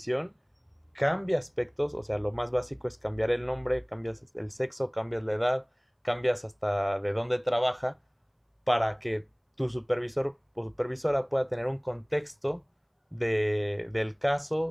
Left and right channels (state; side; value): identical; both; correlation 1.00